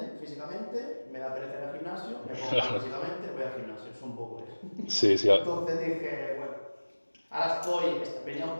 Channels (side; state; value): both; inverted; correlation -1.00